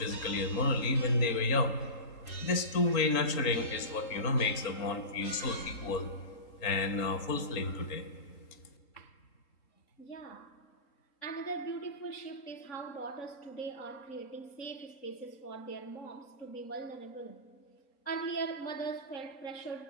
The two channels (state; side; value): late; right; 3.8 ms